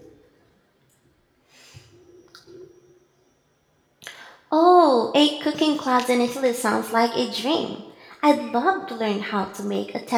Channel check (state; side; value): identical; both; correlation 1.00